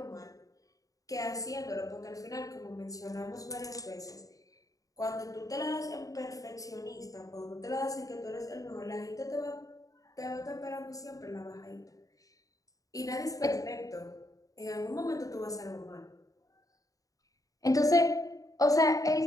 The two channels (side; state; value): right; late; 0.17 ms